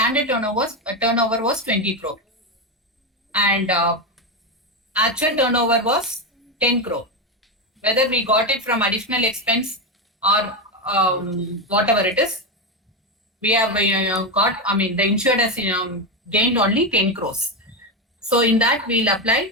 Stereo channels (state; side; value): normal; both; correlation 0.11